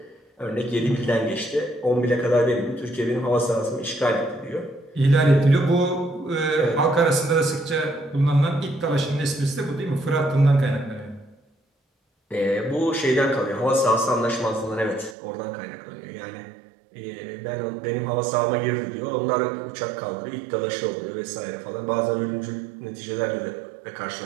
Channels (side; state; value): left; drops out; at 15.2 s